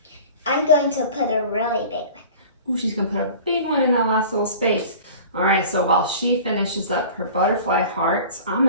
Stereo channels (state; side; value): inverted; both; correlation -0.41